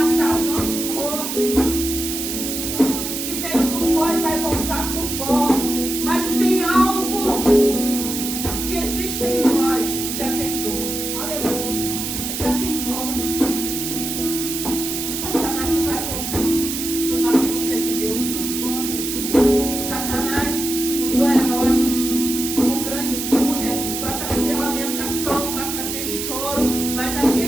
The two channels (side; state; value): right; noise; hiss, 4 dB below the sound